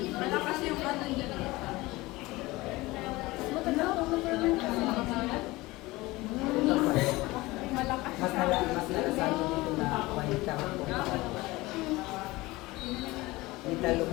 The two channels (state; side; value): quieter; right; 20.6 dB